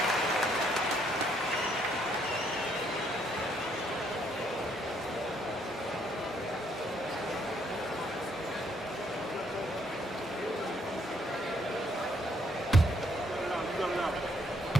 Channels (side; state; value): both; normal; correlation 0.69